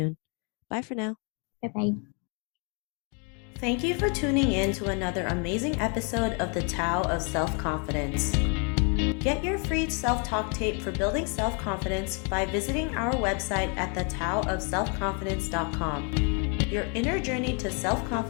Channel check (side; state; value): right; quieter; 37.2 dB